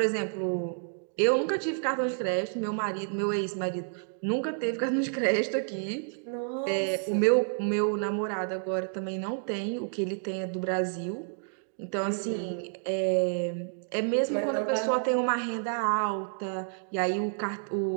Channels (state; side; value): silent; left; digital silence